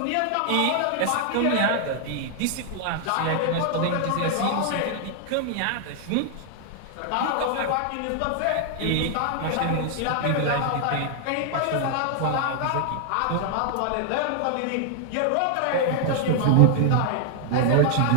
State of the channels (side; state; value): both; different; correlation 0.00